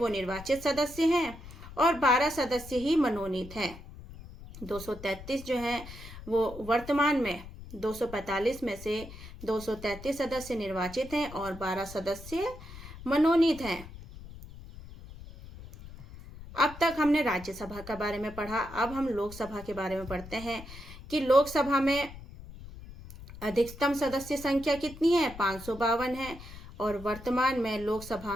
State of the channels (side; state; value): left; noise; rumble, 15 dB below the sound